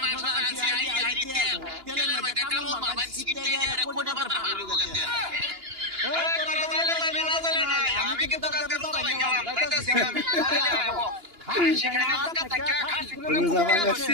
মাংস জানছি আই তেলের মধ্যে কামড় মারবেন সিকিট দিয়ে কোনে পাতা আর গেছে আমি কিন্তু কালকে রোজা ভাই গেলাম তাইতাছি আমি খাসি খাইনা আজকে থাকা খাসি করে কুমিয়ে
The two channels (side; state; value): left; late; 2.9 ms